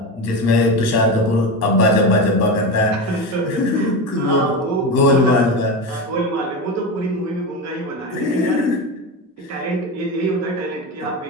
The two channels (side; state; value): both; normal; correlation 0.20